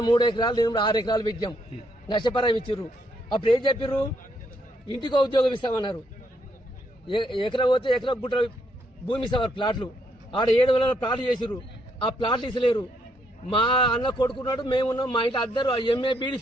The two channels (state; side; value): normal; both; correlation 0.74